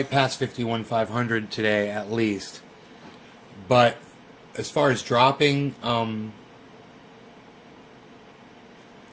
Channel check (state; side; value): identical; both; correlation 1.00